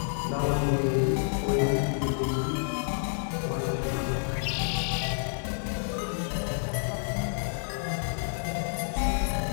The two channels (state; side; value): silent; right; 58 dB below the other